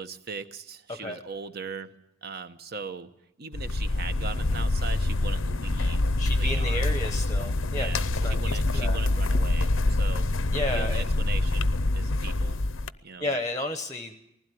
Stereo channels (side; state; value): both; normal; correlation 0.81